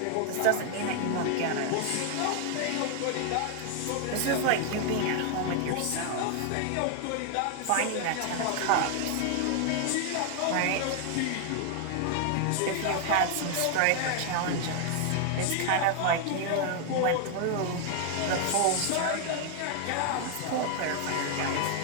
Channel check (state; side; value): different; both; correlation 0.00